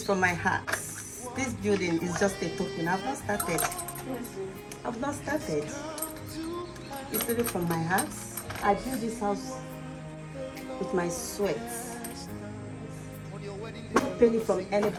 from my heart. This building is just a token. I've not started. It's really from my heart. I built this house with my sweat. No penny from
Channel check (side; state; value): both; identical; correlation 1.00